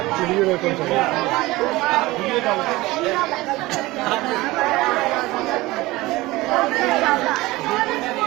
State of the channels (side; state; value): left; quieter; 19.8 dB